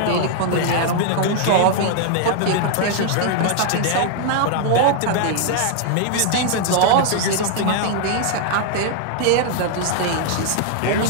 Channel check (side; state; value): both; different; correlation 0.00